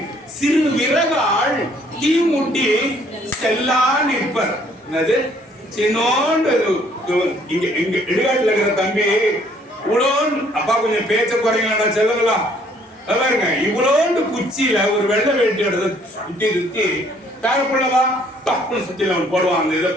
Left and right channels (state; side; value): normal; both; correlation 0.62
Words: சிறு விறகால் தீ முட்டி செல்லா நிற்பர். என்னது சின்னோண்டு இங்க இங்க இடுகாட்டுல இருக்கிற தம்பி இவ்வளோன்னு அப்பா கொஞ்சம் பேச்ச குறைங்களா செல்லலாம் பாருங்க. இவ்வளோண்டு குச்சியில ஒரு வெள்ளை வேட்டி எடுத்து சுத்தி சுத்தி பேரப்புள்ளவா தப்புன்னு சுத்தில அவன் போடுவான் அந்த இதை